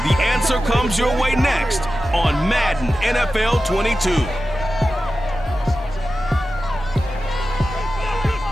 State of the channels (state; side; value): normal; both; correlation 0.93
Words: The answer comes your way next on Madden NFL 22.